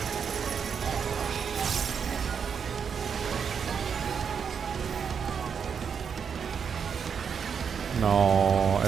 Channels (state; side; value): quieter; left; 6.8 dB